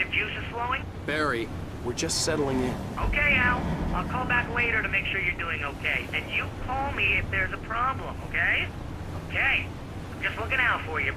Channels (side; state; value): both; identical; correlation 1.00